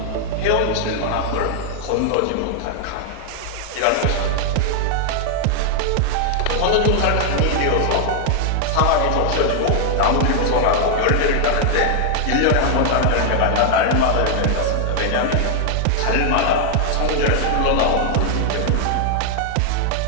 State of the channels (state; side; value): different; both; correlation 0.00